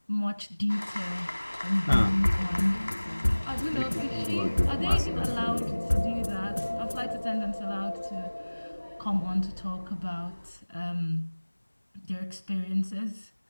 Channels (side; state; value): both; inverted; correlation -1.00